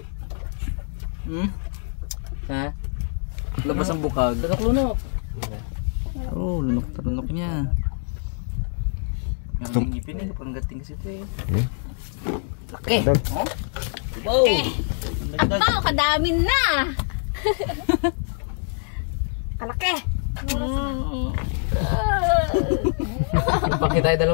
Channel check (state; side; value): silent; right; 58 dB below the other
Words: Ha? Labas ang bukag. Lunok-lunok. Oh, lunok-lunok niya. Ang ngipin eh, parang gating kasi ito eh. Laki! Dag. Wow! Ito, kadami na. Kalaki. Bakit tayo